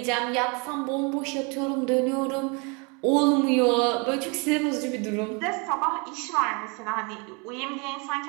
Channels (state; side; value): quieter; left; 31.9 dB